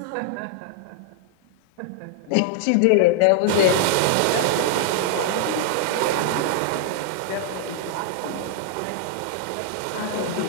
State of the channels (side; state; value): both; different; correlation -0.01